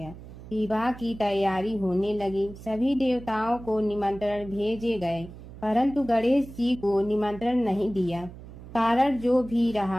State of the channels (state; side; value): noise; right; hum, 15 dB below the sound